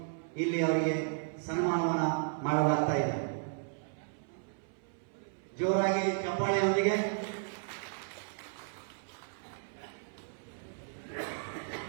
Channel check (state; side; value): silent; left; 55 dB below the other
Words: ಇಲ್ಲಿ ಅವರಿಗೆ ಸನ್ಮಾನವನ್ನ ಮಾಡಲಾಗ್ತಾ ಇದೆ. ಜೋರಾಗಿ ಚಪ್ಪಾಳೆಯೊಂದಿಗೆ